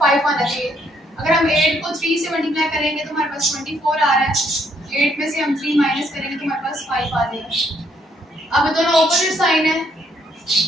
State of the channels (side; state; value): both; normal; correlation 0.70